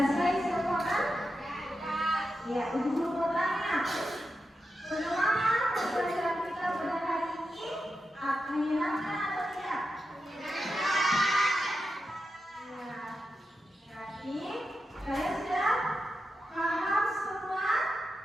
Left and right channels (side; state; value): both; normal; correlation 0.89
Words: semua kan? Ya, Ibu Guru mau tanya, bagaimana pembelajaran kita pada hari ini? Menyenangkan atau tidak? Ya, berarti kalian sudah paham semua